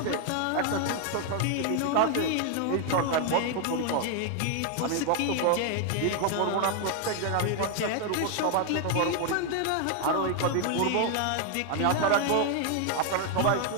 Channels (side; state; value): both; different; correlation 0.00